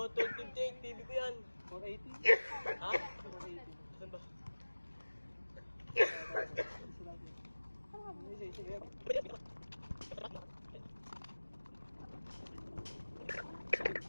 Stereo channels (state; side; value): inverted; both; correlation -1.00